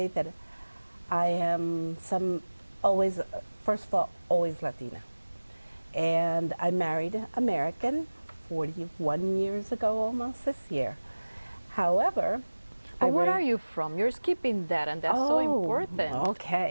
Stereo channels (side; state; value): both; inverted; correlation -1.00